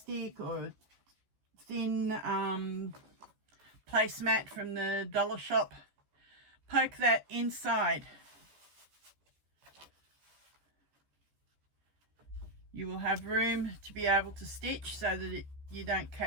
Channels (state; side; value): late; left; 14 ms